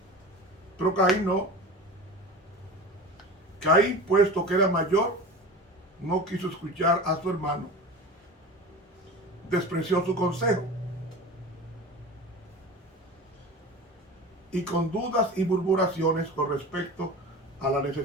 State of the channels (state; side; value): normal; both; correlation 0.33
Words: Pero Caín no. Caín, puesto que era mayor, no quiso escuchar a su hermano. Despreció su consejo. Y con dudas y murmuraciones con respecto a la